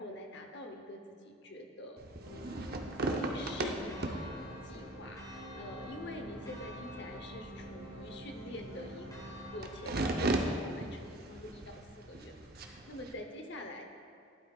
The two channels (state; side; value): normal; both; correlation 0.44